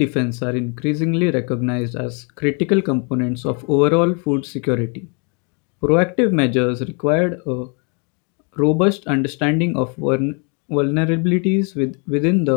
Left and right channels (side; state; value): right; quieter; 35.9 dB